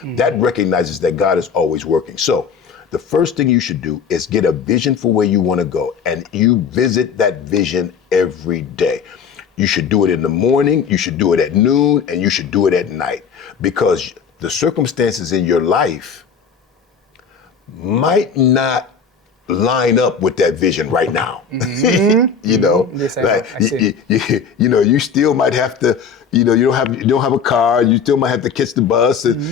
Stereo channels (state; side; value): quieter; right; 6.3 dB